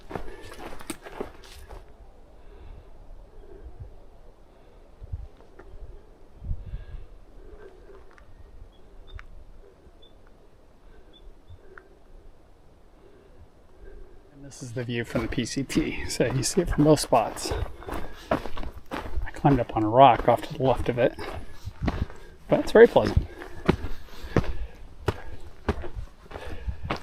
And this is the view from the PCT, so you see it from both spots. I climbed up on a rock off to the left of it, but it's very pleasant.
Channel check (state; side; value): identical; both; correlation 1.00